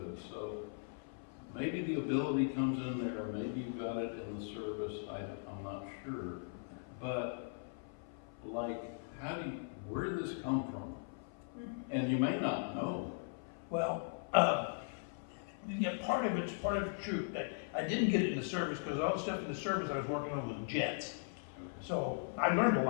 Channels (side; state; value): right; silent; 52 dB below the other